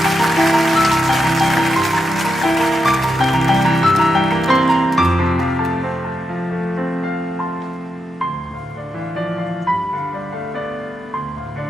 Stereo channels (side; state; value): both; normal; correlation 0.85